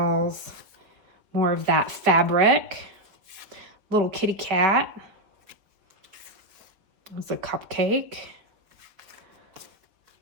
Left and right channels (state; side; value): late; left; 4.8 ms